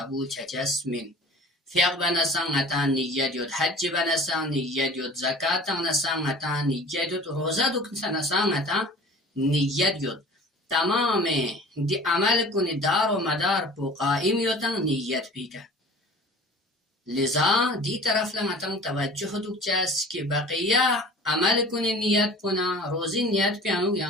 چچس من فیق بنسان نتا نیت یود حج بنسان نیت یود زکاة نسان نتا نیت یود روزه دکن نسان نتا نیت یود تمام دی عمل کنی دار و مدار پو قائم یوتن نیت پیکا لذا دی طرف لمتن توجه دوک چاس که بقیه عمل کنی نیت پونا روزی نیت پیانو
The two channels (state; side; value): normal; both; correlation 0.43